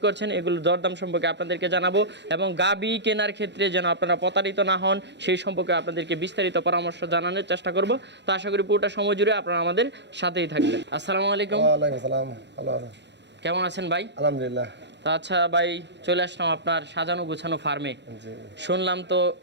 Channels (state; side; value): late; left; 0.51 ms